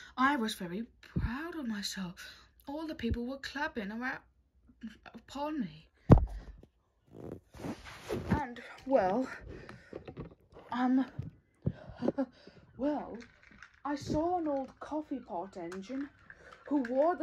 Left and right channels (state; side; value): identical; both; correlation 1.00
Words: I was very proud of myself. All the people were clapping around upon me. And, well, well, I saw an old coffee pot engine who wore